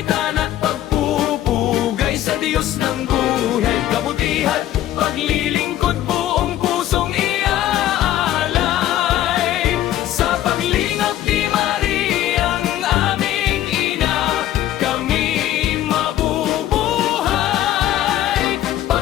at pagpupugay sa Diyos ng buhay, kabutihan, paglilingkod, buong pusong iaalay. Sa paglingap ni Mariang aming ina, kami mabubuhay.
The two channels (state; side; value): quieter; right; 12.9 dB